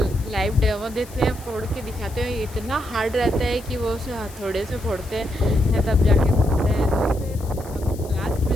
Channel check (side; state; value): left; noise; hiss, 20 dB below the sound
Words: लाइव डेमो देते हैं, फोड़ के दिखाते हैं। ये इतना हार्ड रहता है कि वो उसे हथौड़े से फोड़ते हैं तब जाके फूटता है। तो फिर लास्ट में